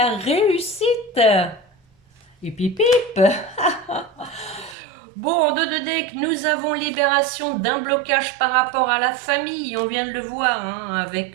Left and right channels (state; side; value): drops out; left; at 4.8 s